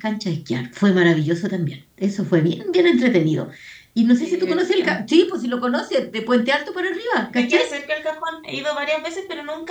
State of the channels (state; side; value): identical; both; correlation 1.00